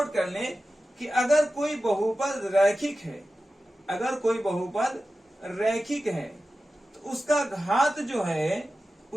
कर लें कि अगर कोई बहुपद रैखिक है, अगर कोई बहुपद रैखिक है तो उसका घात जो है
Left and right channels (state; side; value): normal; both; correlation 0.94